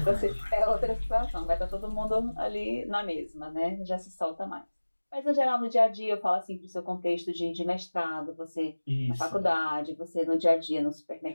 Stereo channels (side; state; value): both; inverted; correlation -1.00